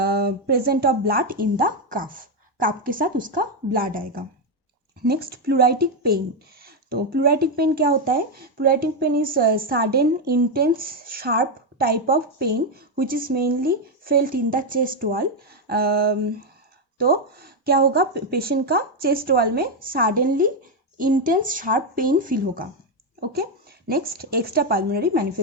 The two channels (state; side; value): normal; both; correlation 0.05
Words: of blood in the cough के साथ उसका ब्लड आएगा. नेक्स्ट प्लूराइटिक पेन, तो प्लूराटिक पेन क्या होता है? Pleuritic pain is sudden intense sharp type of pain which is mainly felt in the chest wall. तो क्या होगा, पेशेंट का चेस्ट वॉल में suddenly intense sharp pain feel होगा। Okay, next extra pulmonary